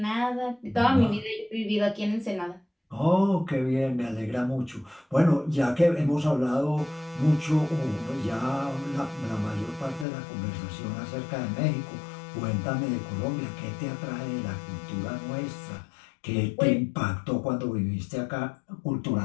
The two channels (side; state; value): right; drops out; at 10.1 s